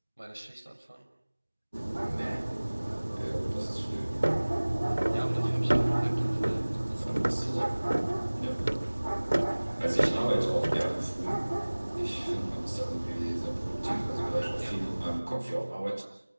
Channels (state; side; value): inverted; both; correlation -1.00